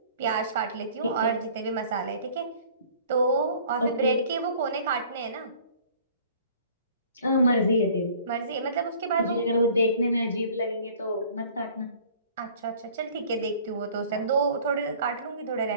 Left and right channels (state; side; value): inverted; both; correlation -0.51